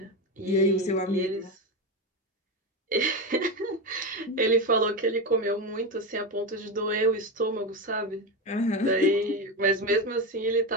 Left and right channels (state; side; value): normal; both; correlation 0.15